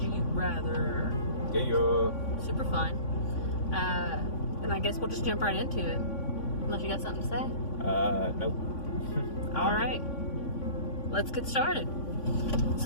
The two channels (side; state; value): right; late; 3.5 ms